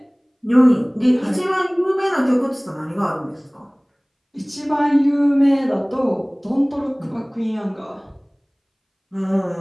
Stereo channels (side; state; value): both; identical; correlation 1.00